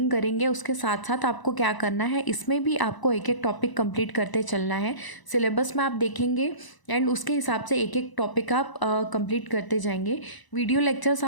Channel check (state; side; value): late; right; 1.0 ms